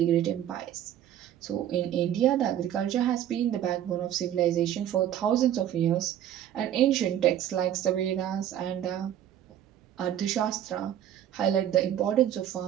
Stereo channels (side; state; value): left; quieter; 11.0 dB